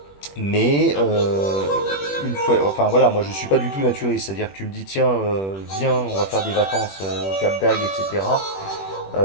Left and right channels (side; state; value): right; late; 21 ms